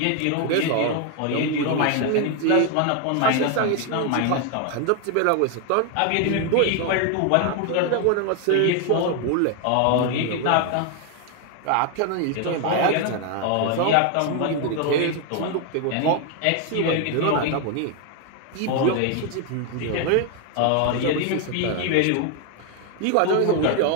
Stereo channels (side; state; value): both; different; correlation 0.01